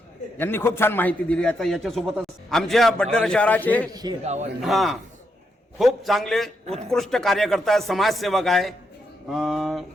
यांनी खूप छान माहिती दिली. आता याच्यासोबतच आमच्या बडनेरा शहराचे खूप चांगले उत्कृष्ट कार्यकर्ता समाजसेवक आहे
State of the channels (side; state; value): both; normal; correlation 0.81